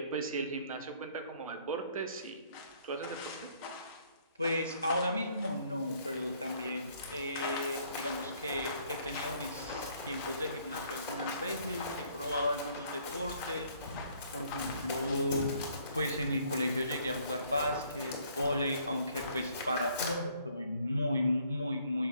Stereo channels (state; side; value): inverted; both; correlation -0.64